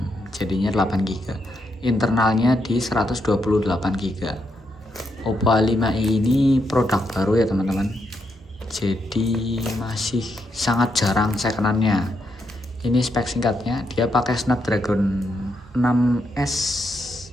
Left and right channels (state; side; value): normal; both; correlation 0.80